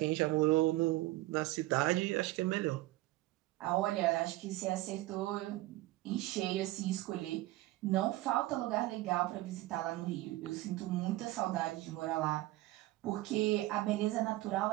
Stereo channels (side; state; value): left; quieter; 18.0 dB